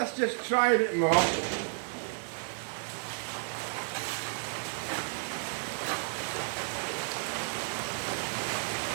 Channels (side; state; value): left; silent; 56 dB below the other